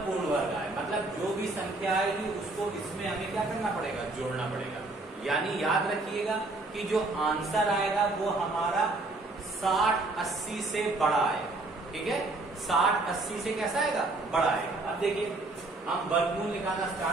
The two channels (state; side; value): quieter; left; 3.1 dB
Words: पूर्ण वर्ग आए। मतलब जो भी संख्या आएगी उसको इसमें हमें क्या करना पड़ेगा, जोड़ना पड़ेगा। यानी याद रखिएगा कि जो आंसर आएगा वो हमारा 60-80 से बड़ा आएगा। ठीक है, 60-80 से कैसा आएगा, बड़ा आएगा। अब देखिए हम वर्गमूल निकालना